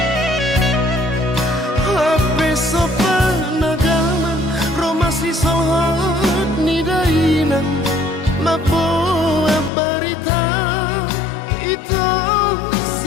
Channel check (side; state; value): right; drops out; at 9.7 s